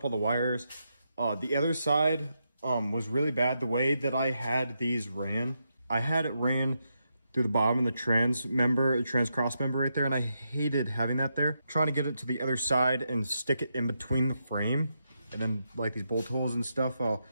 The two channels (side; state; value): both; inverted; correlation -0.83